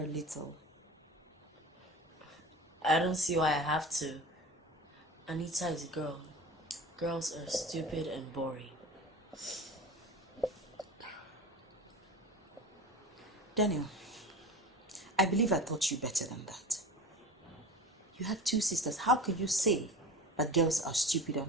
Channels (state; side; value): normal; both; correlation 0.34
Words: a little. I don't see why I have to. Anita is a girl. Girls are stupid and boring. Daniel, I believe I taught you better than that. You have two sisters. How can you say that girls are stupid